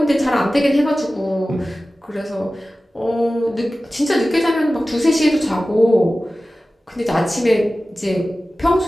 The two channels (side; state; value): both; normal; correlation 0.96